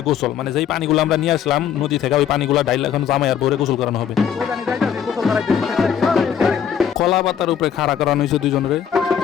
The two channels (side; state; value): right; quieter; 8.7 dB